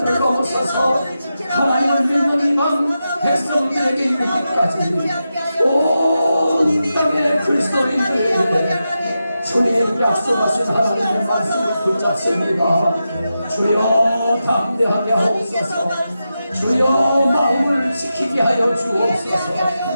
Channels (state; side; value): inverted; both; correlation -0.90